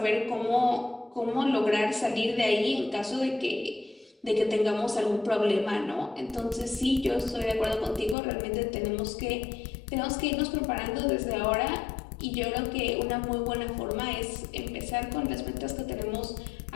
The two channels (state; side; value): drops out; right; at 8.2 s